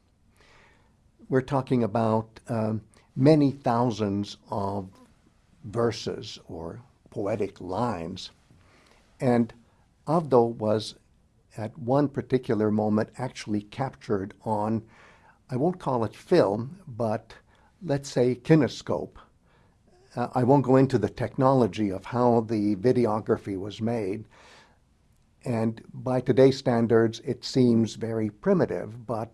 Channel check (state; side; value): identical; both; correlation 1.00